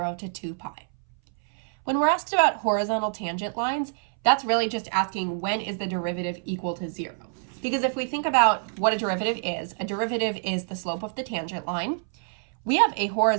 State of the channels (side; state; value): left; silent; 61 dB below the other